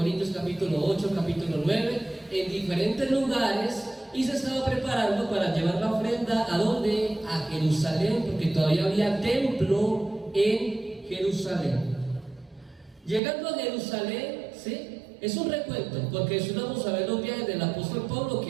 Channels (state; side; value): drops out; left; at 13.2 s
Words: capítulo 8, capítulo 9, en diferentes lugares, y se estaba preparando para llevar la ofrenda ¿a dónde? A Jerusalén, porque todavía había templo en Jerusalén. Llegando a Jerusalén, ¿sí? Es un recuento, porque si vamos a ver los viajes del apóstol Pablo,